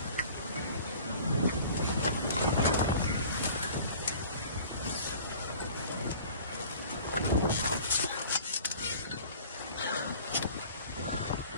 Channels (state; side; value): inverted; both; correlation -0.46